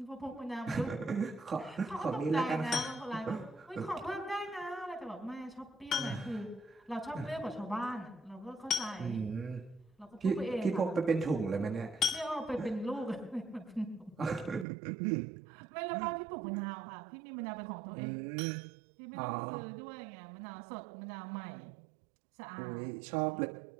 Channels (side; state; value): left; drops out; at 14.7 s